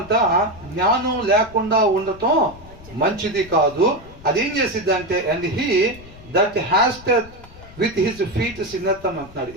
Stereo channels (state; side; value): noise; left; rumble, 20 dB below the sound